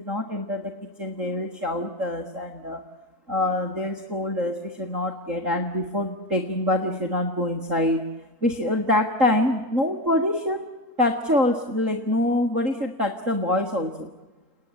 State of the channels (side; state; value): left; late; 3.9 ms